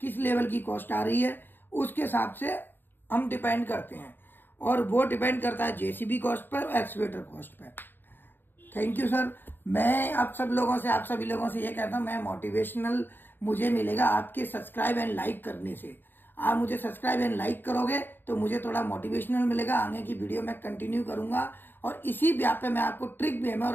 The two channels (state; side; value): late; right; 0.095 ms